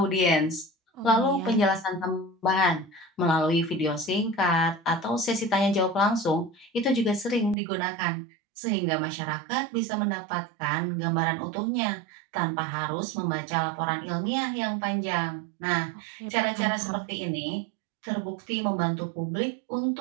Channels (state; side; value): drops out; left; at 7.6 s